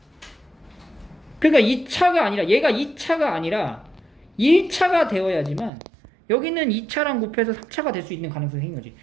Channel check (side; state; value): left; drops out; at 5.7 s